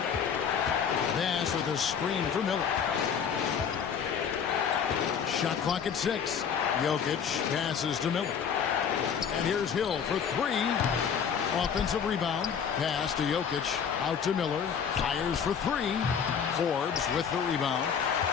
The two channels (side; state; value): right; quieter; 7.3 dB